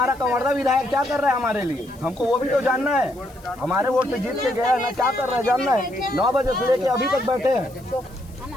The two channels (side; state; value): left; noise; hiss, 27 dB below the sound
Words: कंवर्धा विधायक क्या कर रहा है हमारे लिए, हमको वो भी तो जानना है। हमारे वोट से जीत के गया ना, क्या कर रहा है जानना है। 9 बजे से लेके अभी तक बैठे हैं।